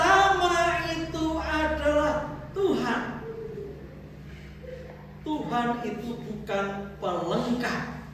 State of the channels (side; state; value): both; identical; correlation 1.00